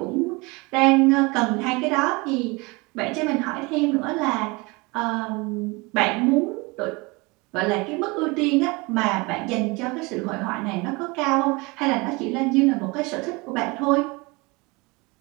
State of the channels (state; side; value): quieter; left; 26.0 dB